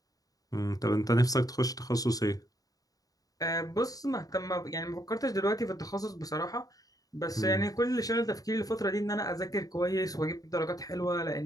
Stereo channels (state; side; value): late; right; 0.18 ms